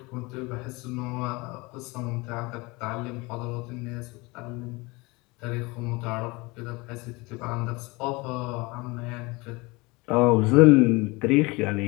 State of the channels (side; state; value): right; quieter; 24.8 dB